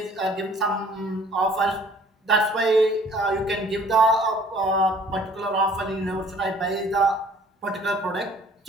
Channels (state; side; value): normal; both; correlation 0.54